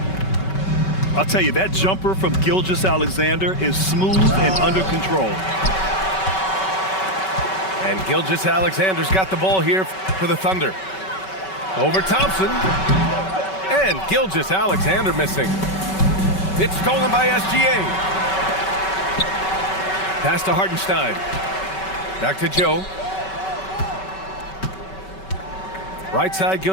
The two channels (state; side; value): late; right; 5.3 ms